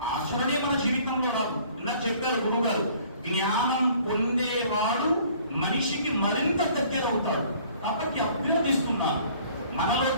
ఆచరణే మన జీవితంలో రాదు. ఇందాక చెప్పారు గురువు గారు, జ్ఞానం పొందేవాడు మనిషికి మరింత దగ్గర అవుతాడు. కాబట్టి అభ్యర్థిస్తున్నాను, మనలో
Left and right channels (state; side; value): inverted; both; correlation -0.55